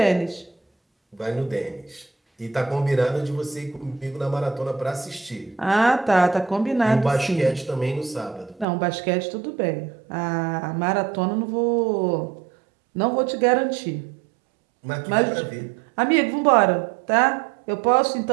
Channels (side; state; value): left; drops out; at 8.7 s